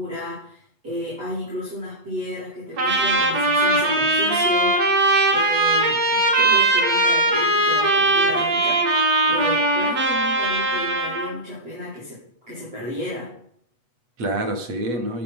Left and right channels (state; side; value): late; left; 8.2 ms